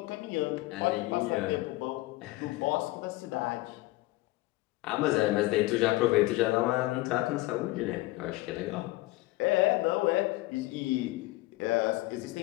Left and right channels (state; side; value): quieter; right; 19.4 dB